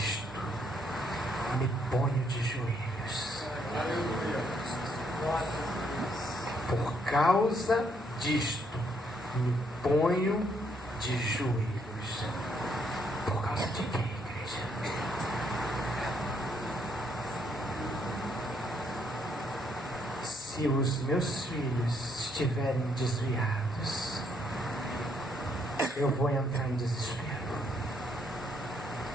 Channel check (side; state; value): both; normal; correlation 0.72